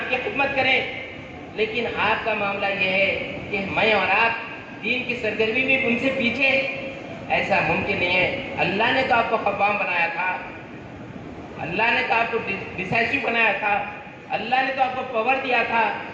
کی خدمت کریں، لیکن آپ کا معاملہ یہ ہے کہ میں اور آپ دین کی سرگرمی میں ان سے پیچھے، ایسا ممکن نہیں ہے۔ اللہ نے تو آپ کو قوام بنایا تھا، اللہ نے تو آپ کو ڈیسائسو بنایا تھا، اللہ نے تو آپ کو پاور دیا تھا،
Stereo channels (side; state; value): both; identical; correlation 1.00